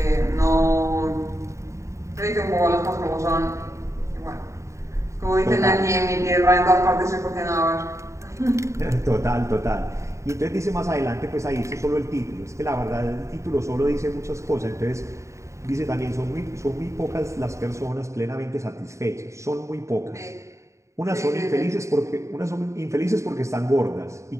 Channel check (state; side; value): late; left; 0.14 ms